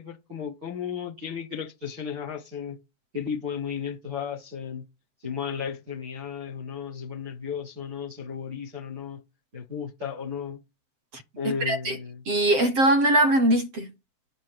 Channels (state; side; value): late; left; 7.7 ms